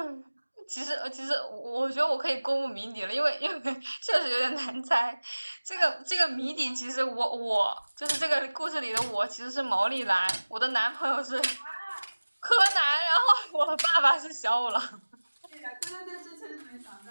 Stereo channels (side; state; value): both; inverted; correlation -1.00